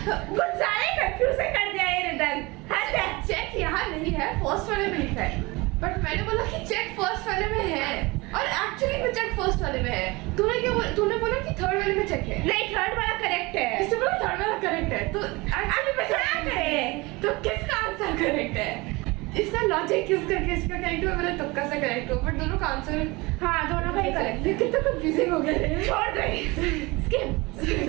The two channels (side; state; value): left; quieter; 23.8 dB